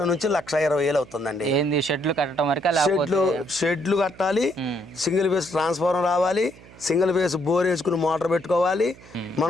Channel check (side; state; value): right; noise; hum, 22 dB below the sound